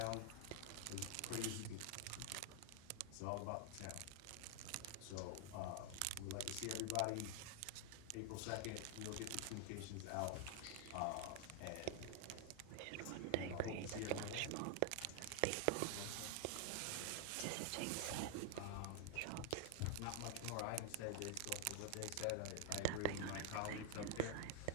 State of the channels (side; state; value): both; different; correlation 0.00